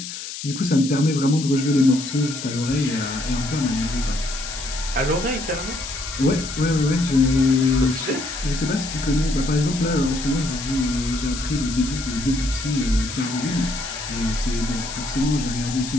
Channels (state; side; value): noise; left; hiss, 9 dB below the sound